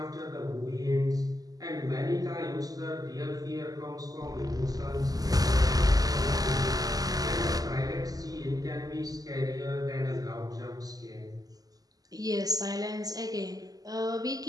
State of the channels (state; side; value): late; left; 0.18 ms